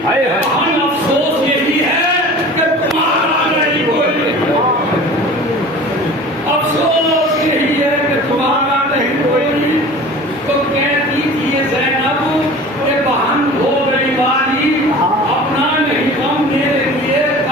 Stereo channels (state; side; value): normal; both; correlation 0.41